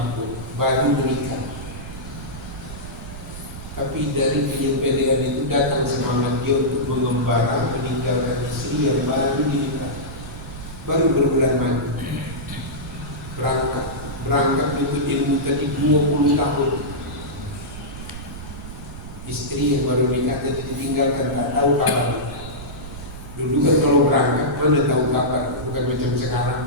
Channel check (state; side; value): noise; right; rumble, 12 dB below the sound